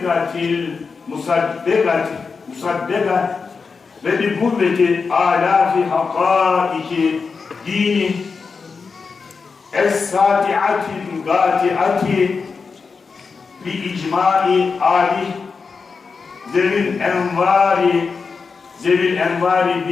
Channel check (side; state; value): right; quieter; 5.0 dB